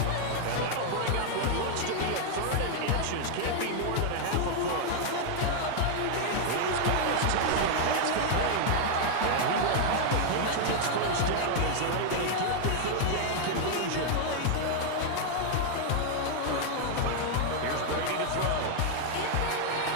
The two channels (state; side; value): different; both; correlation 0.00